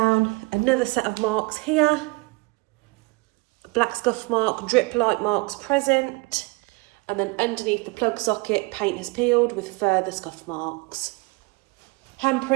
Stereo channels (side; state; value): left; quieter; 26.3 dB